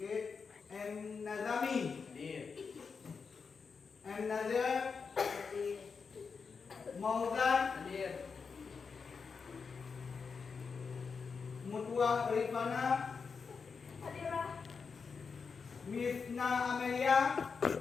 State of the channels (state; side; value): quieter; right; 5.4 dB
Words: M Nazami, M Nazir, Mauzan, Mutua Rifana, Misna Amelia,